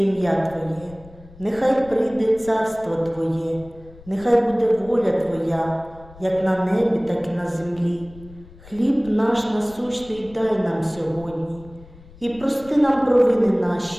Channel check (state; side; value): noise; left; rumble, 21 dB below the sound